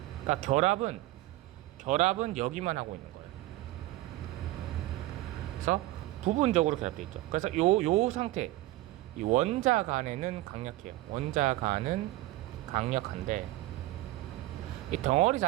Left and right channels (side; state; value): left; quieter; 17.1 dB